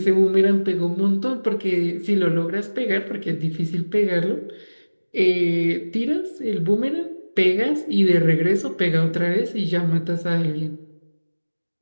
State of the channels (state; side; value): inverted; both; correlation -1.00